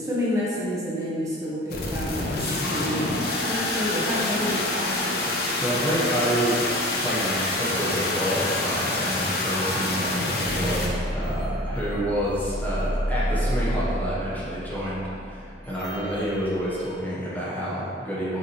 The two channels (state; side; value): normal; both; correlation 0.42